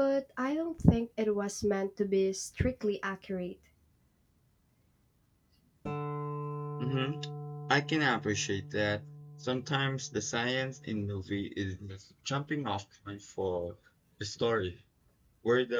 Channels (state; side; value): identical; both; correlation 1.00